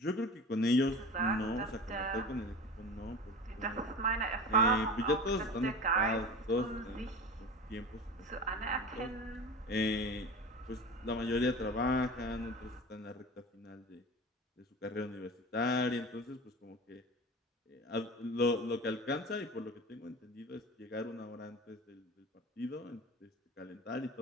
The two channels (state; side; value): normal; both; correlation 0.34